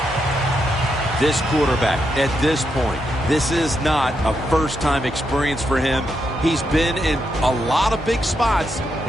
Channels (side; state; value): both; normal; correlation 0.82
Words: This quarterback, at this point, this is not a first-time experience for him. He's been in a lot of big spots